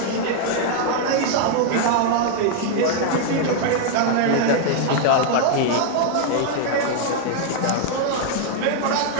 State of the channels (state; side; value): different; both; correlation 0.00